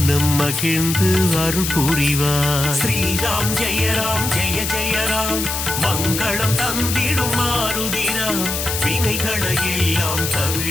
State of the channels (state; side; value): noise; left; hiss, 3 dB below the sound